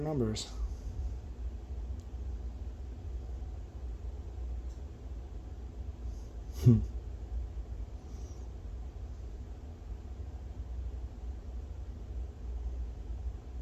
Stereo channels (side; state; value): both; identical; correlation 1.00